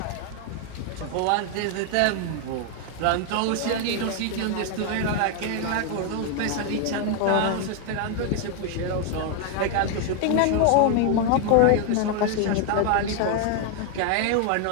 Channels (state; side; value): different; both; correlation 0.00